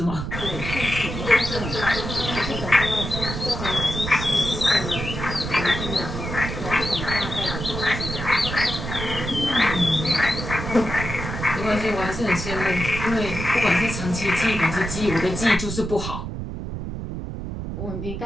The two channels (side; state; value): right; noise; rumble, 6 dB below the sound